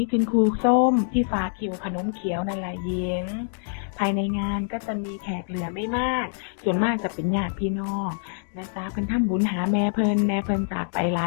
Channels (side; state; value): right; silent; digital silence